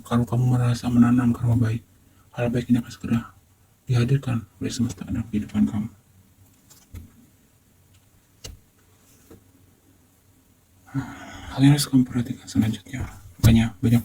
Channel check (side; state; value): both; identical; correlation 1.00